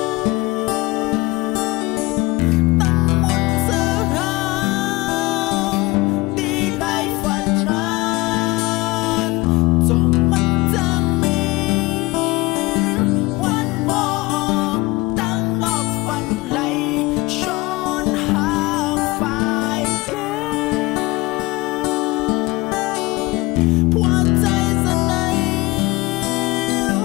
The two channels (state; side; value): quieter; right; 22.0 dB